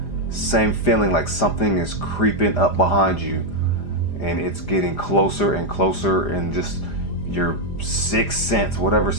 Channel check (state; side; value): late; right; 5.0 ms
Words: Same feeling like something is creeping up behind you and it's getting closer and closer, and just your sixth sense, whatever